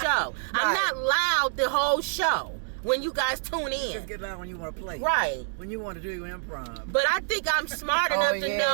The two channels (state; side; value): silent; left; digital silence